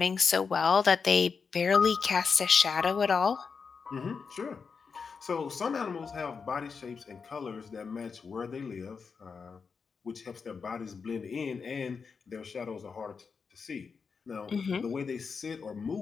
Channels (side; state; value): right; quieter; 5.5 dB